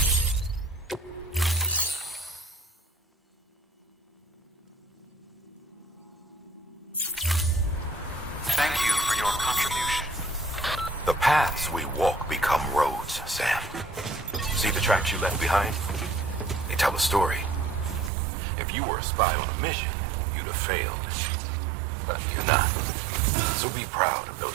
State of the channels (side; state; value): left; drops out; at 18.1 s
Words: These, Sam. See the tracks you left behind? They tell a story. If you were a spy on a mission, you'd have failed. But you're not. So be proud of